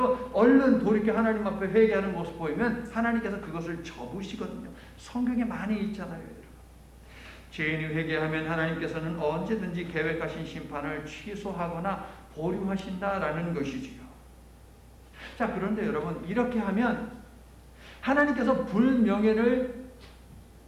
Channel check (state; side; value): identical; both; correlation 1.00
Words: 얼른 돌이켜 하나님 앞에 회개하는 모습 보이면 하나님께서 그것을 접으시거든요. 성경에 많이 있잖아요, 여러분. 죄인이 회개하면 하나님께서는 언제든지 계획하신 심판을 취소하거나 보류하신다라는 것이지요. 자, 그런데 여러분, 이렇게 하면 하나님께서 불명예를